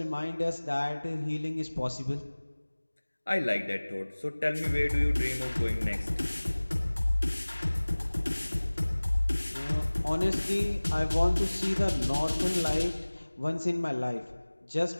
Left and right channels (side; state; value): both; inverted; correlation -1.00